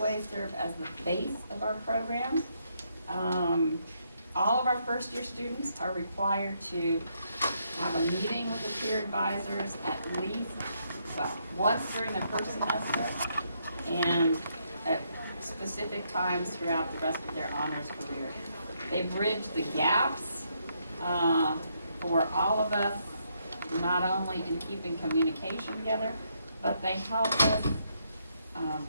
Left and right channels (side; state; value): both; inverted; correlation -0.75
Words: serve as the face of our program. All of our first year students are required to have a meeting with the peer advisors at least, well, once during the first semester and at specific times throughout the rest of their honors career. They bridge the gaps for all of us, not only in keeping communication together, but they help us